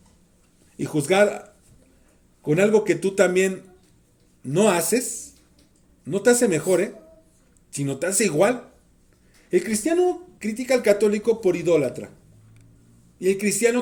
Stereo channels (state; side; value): identical; both; correlation 1.00